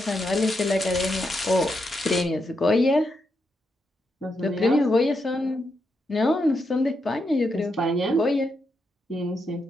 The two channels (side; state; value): both; normal; correlation 0.83